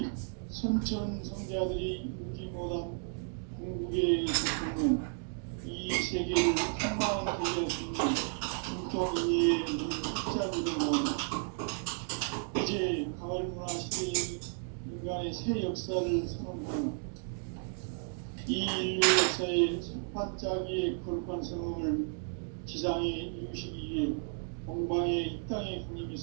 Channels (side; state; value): left; silent; 56 dB below the other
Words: 선천 성자들이 이루지 못한 궁극의 고통은 이 세계를 한마음 되게 할 수 있는 중통인의의 문을 활짝 열어놓은 이제 가을 문화 시대의 인간의 새 역사를 선언하는 이 인류 역사의 반짝이의 거룩한 성음을 지상에 이루시기 위해 동방의 이 땅에